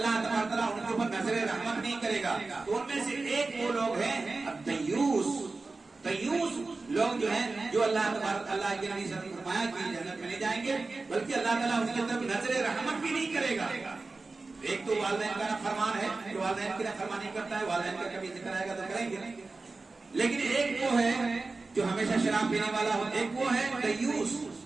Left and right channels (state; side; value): quieter; left; 3.7 dB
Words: تبارک تعالیٰ ان کے اوپر نظر رحمت نہیں کرے گا, تو ان میں سے ایک وہ لوگ ہیں دیوس لوگ جو ہیں جو اللہ تبارک اللہ کے نبی صلی اللہ علیہ وسلم نے فرمایا کہ جنت میں نہیں جائیں گے بلکہ اللہ تعالیٰ ان کی طرف نظر رحمت بھی نہیں کرے گا. ایک تو والدین کا فرمان ہے جو والدین کی فرمانی کرتا ہے, والدین کا کبھی ذکر آئے گا تو کریں گے, لیکن ایک وہ ہے جو ہمیشہ شراب پینے والا ہو, ایک وہ ہے